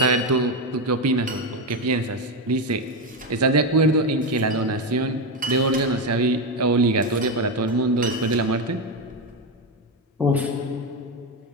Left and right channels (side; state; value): both; normal; correlation 0.11